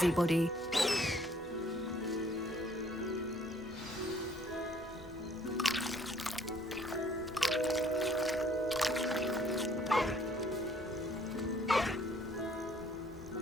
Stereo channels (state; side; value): normal; both; correlation 0.61